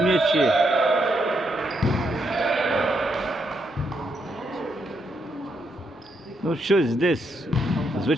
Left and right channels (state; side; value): normal; both; correlation 0.78